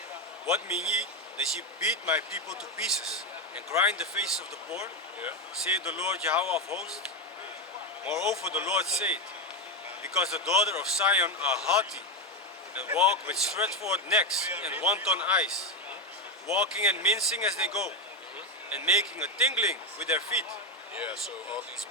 What mean ye that ye beat my people to pieces, and grind the faces of the poor? Yeah. Saith the Lord Yahweh of hosts. Moreover the Lord saith, because the daughter of Zion are haughty, and walk with stretched forth necks and wanton eyes, walking and mincing as they go, and making a tingling with their feet. Yeah, so all these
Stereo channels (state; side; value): normal; both; correlation 0.11